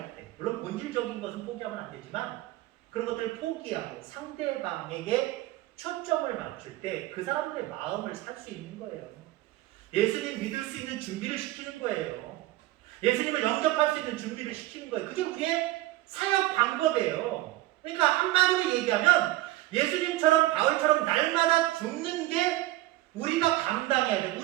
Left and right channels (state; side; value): quieter; left; 16.8 dB